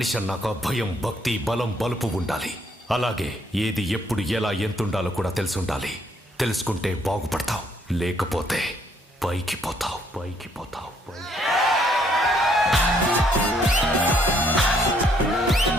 అన్నాక భయం, భక్తి, బలం, బలుపు ఉండాలి. అలాగే ఏది ఎప్పుడు ఎలా ఎంతుండాలో కూడా తెలుసుండాలి. తెలుసుకుంటే బాగుపడతావు, లేకపోతే పైకి పోతావు.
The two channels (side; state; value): both; normal; correlation 0.68